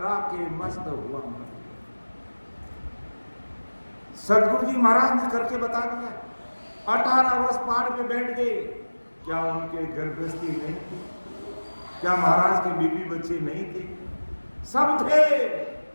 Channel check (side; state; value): both; inverted; correlation -1.00